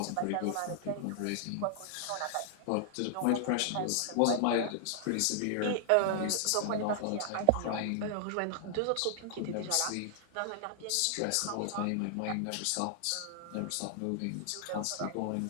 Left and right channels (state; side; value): different; both; correlation 0.00